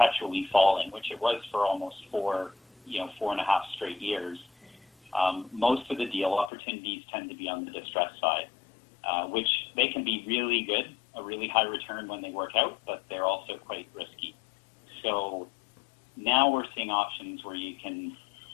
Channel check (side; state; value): right; drops out; at 6.5 s